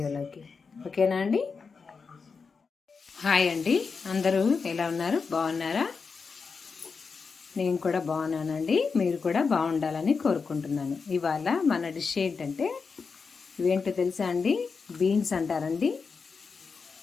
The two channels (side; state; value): right; quieter; 5.1 dB